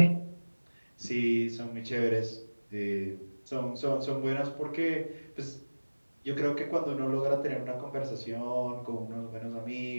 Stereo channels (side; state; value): both; inverted; correlation -1.00